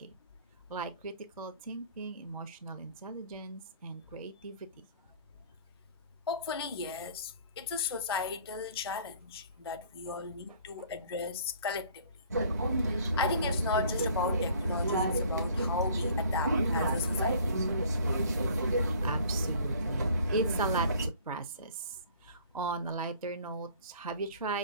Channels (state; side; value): inverted; both; correlation -0.54